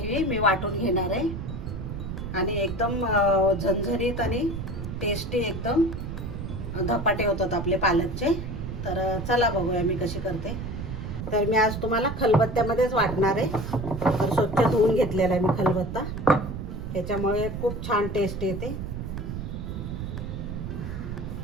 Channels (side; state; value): right; noise; rumble, 6 dB below the sound